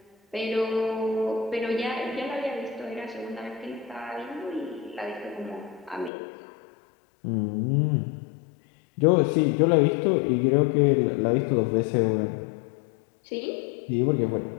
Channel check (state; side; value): drops out; right; at 6.1 s